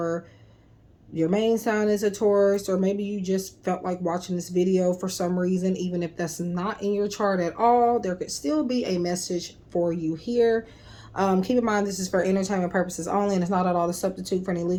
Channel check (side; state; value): both; identical; correlation 1.00